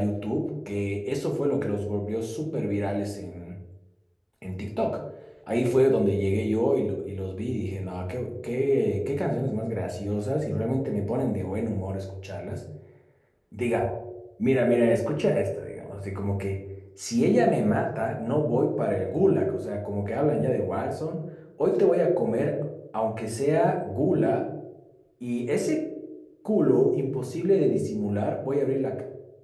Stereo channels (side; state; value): both; identical; correlation 1.00